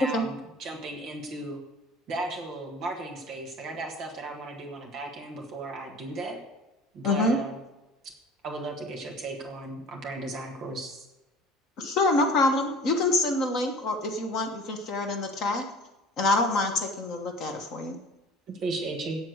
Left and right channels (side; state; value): both; normal; correlation 0.43